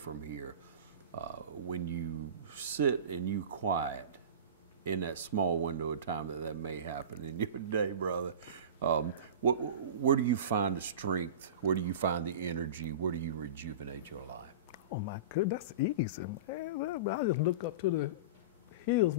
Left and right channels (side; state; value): both; inverted; correlation -0.31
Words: here. When you sit and you quiet in that small window of time that may happen in your day, brother. Where do you find the strength? Where do you find the energy? Where do you rejuvenate your life? Oh my goodness, that's easy, man. I just look up to the hills